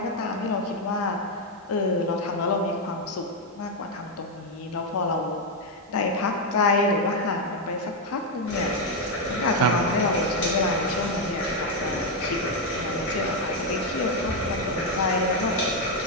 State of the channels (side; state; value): both; normal; correlation 0.02